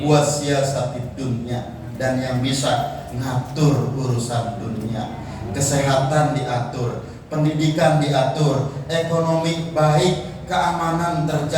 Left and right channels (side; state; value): both; identical; correlation 1.00